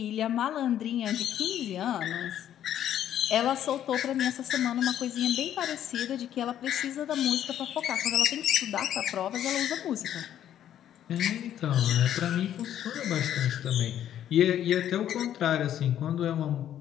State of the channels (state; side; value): quieter; right; 10.8 dB